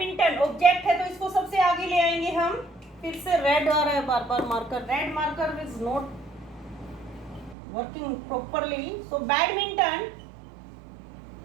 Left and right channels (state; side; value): drops out; left; at 7.6 s